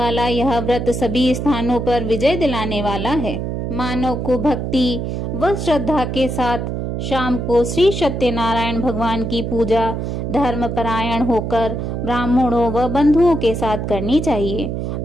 यह व्रत सभी स्थानों पर विजय दिलाने वाला है। मानव को भक्ति व श्रद्धा के साथ शाम को श्री सत्यनारायण भगवान की पूजा धर्म परायण होकर ब्राह्मणों व बंधुओं के साथ करनी चाहिए।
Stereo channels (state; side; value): noise; right; hum, 3 dB below the sound